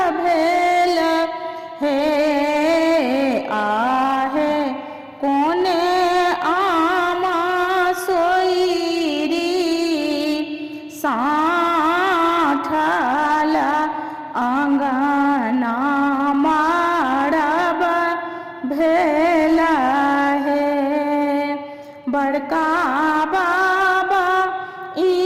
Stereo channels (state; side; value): identical; both; correlation 1.00